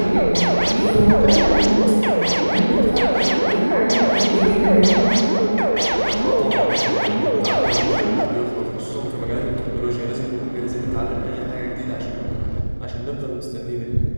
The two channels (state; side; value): inverted; both; correlation -1.00